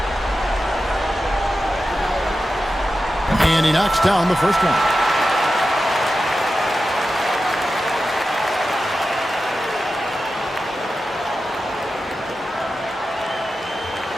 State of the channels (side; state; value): both; normal; correlation 0.92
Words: And he knocks down the first one.